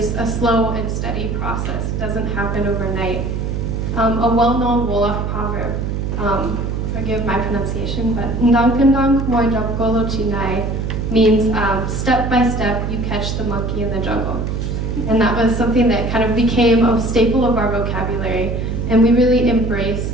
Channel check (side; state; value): right; noise; hum, 2 dB below the sound